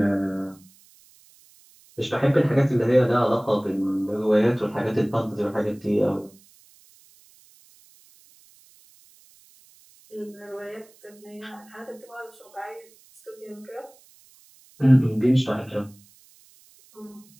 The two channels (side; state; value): right; noise; hiss, 28 dB below the sound